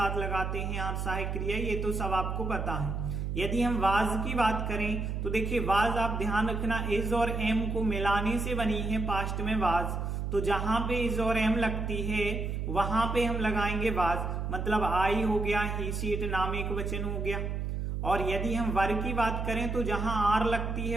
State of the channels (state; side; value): noise; right; hum, 2 dB below the sound